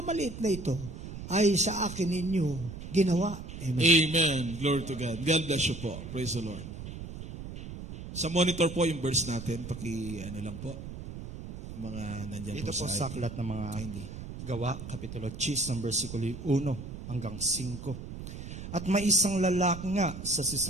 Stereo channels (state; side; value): noise; right; rumble, 10 dB below the sound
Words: na ito, ay sa akin ninyo ginawa. Amen. Amen. Glory to God. God bless you po. Praise the Lord. Sa monitor po yung verse natin, lang po, mga nandyan Ito po sa aklat ng mga Gawa, Kapitulo 10, versikulo 1 hanggang 5. At may isang lalaki nga sa